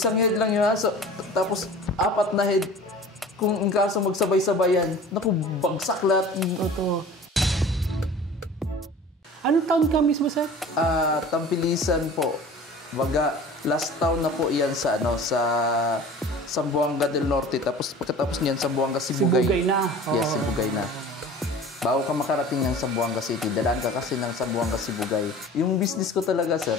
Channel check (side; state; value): both; normal; correlation 0.42